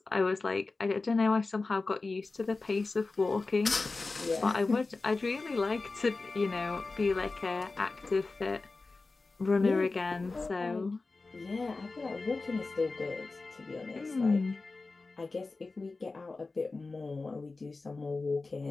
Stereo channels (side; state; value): right; quieter; 3.7 dB